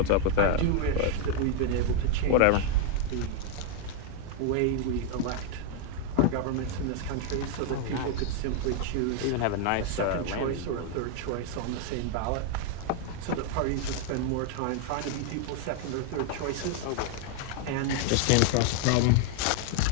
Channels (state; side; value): different; both; correlation 0.01